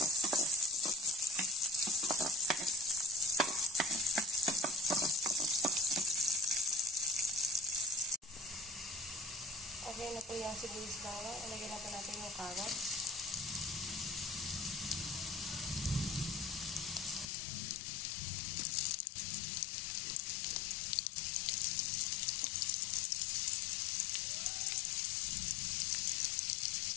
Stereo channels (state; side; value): drops out; right; at 17.3 s